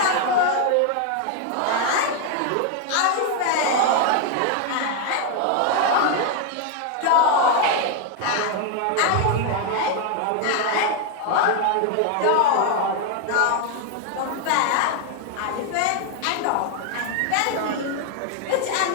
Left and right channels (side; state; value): both; different; correlation 0.01